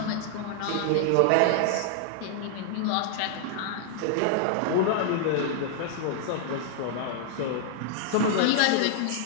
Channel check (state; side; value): different; both; correlation -0.01